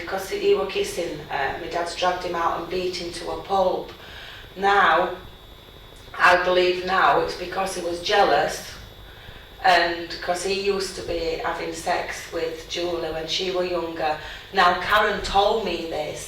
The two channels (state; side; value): identical; both; correlation 1.00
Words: he were kissing, my dad's dragged him out and beat him to a pulp. Now, I believe now it's because he was jealous, and because he used to be having sex with Julie when she was younger. Now, Karen told me